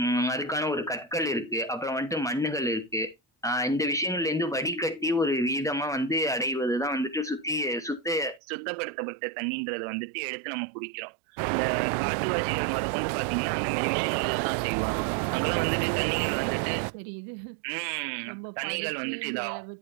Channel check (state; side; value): drops out; left; at 8.4 s